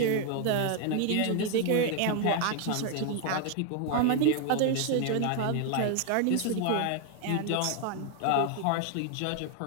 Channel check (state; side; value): different; both; correlation 0.00